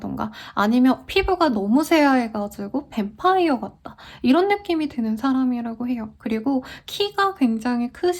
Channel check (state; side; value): identical; both; correlation 1.00